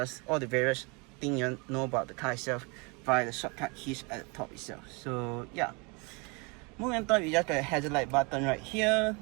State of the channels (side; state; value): left; quieter; 30.2 dB